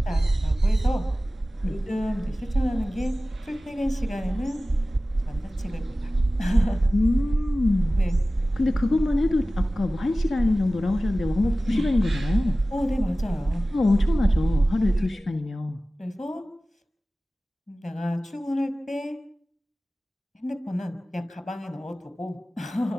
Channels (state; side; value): normal; both; correlation 0.96